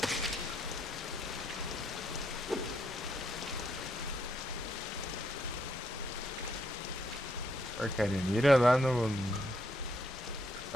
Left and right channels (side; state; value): both; normal; correlation 0.74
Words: Porcaria, mira lá no